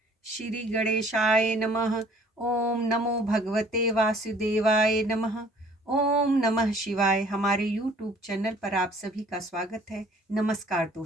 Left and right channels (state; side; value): normal; both; correlation 0.55